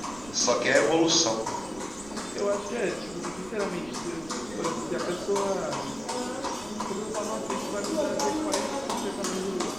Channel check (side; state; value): right; noise; rumble, 19 dB below the sound